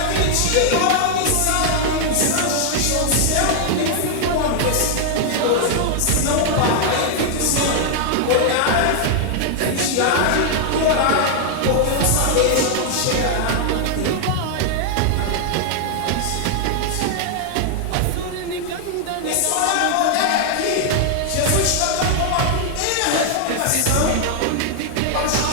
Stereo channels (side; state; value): both; different; correlation 0.00